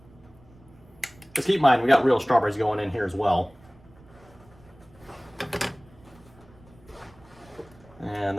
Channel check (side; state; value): right; noise; rumble, 26 dB below the sound